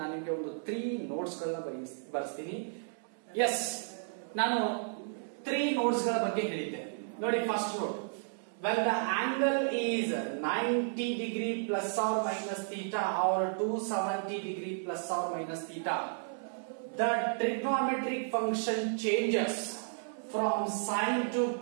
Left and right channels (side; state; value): left; silent; digital silence